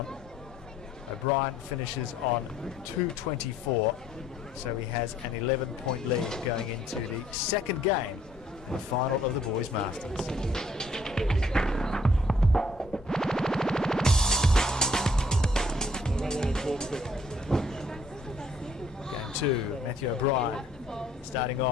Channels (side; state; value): both; normal; correlation 0.64